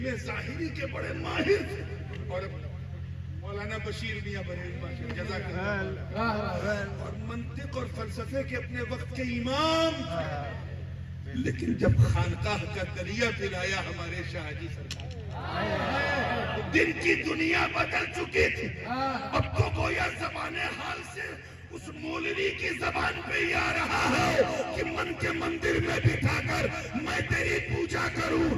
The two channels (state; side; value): identical; both; correlation 1.00